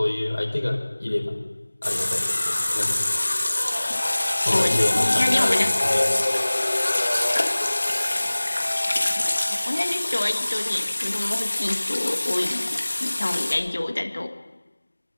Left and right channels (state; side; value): inverted; both; correlation -1.00